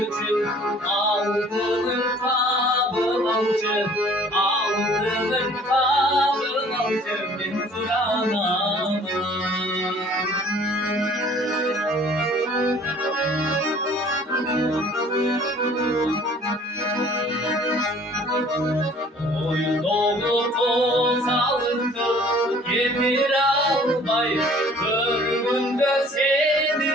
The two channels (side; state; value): both; normal; correlation 0.53